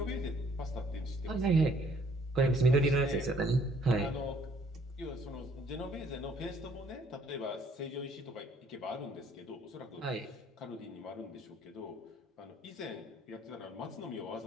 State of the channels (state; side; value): normal; both; correlation 0.62